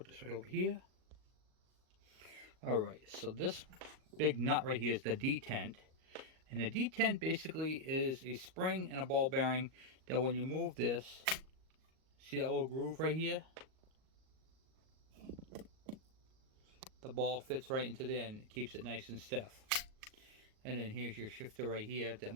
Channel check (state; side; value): late; left; 38 ms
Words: this right over here. Alright, so this big nut right here is the detent. And the detent basically is a spring and a ball bearing that when you move this, see that little groove right here? The ball fits right into there and it keeps it nice and stiff. And then here's your shifter right here that